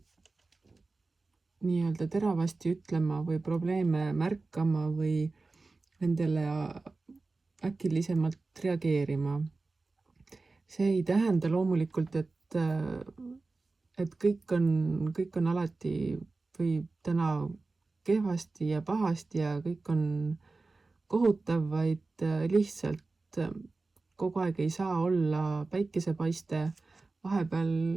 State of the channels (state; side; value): quieter; left; 3.6 dB